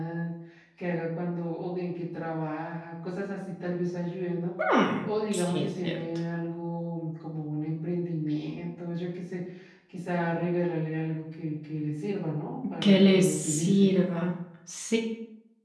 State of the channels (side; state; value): both; identical; correlation 1.00